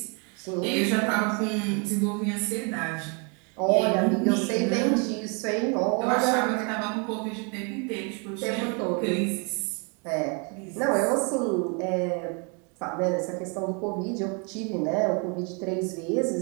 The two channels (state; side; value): quieter; left; 35.1 dB